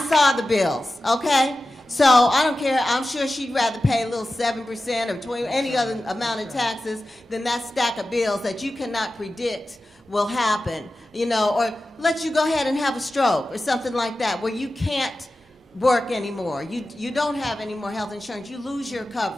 saw the bills, okay? So I don't care. I'm sure she'd rather pay a little 7% or 20%, any other amount of taxes than that stack of bills that you cannot predict will happen, or let you go ahead and have a stroke or something like that where you can't work anymore. You don't have any more health insurance. You lose your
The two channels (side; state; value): both; normal; correlation 0.94